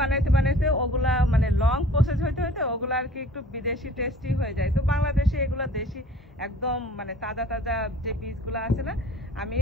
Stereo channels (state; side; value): normal; both; correlation 0.49